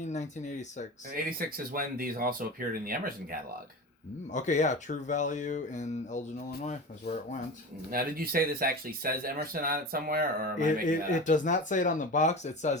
And 86 is when these also appeared in the Emerson catalog. Okay, yeah, True Value in Elgin, Illinois is where it went. Now, did you say this actually says Emerson on it somewhere, or am I making that up? It does not say it on the box. It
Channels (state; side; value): normal; both; correlation 0.29